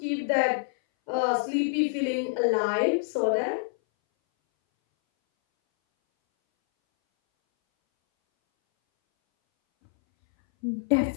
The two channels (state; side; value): silent; right; 60 dB below the other